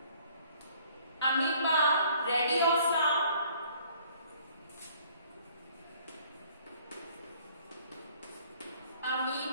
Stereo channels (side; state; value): both; inverted; correlation -0.58